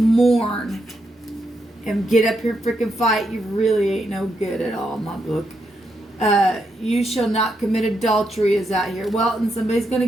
and get up here and freaking fight. You really ain't no good at all in my book. You shall not commit adultery is out here. Well, and somebody's going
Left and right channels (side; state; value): both; normal; correlation 0.81